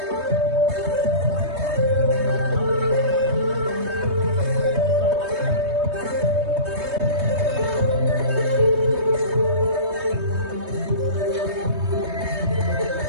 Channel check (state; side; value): late; left; 3.2 ms